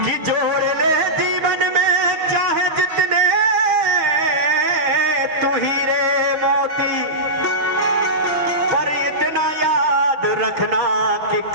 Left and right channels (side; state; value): left; late; 6.4 ms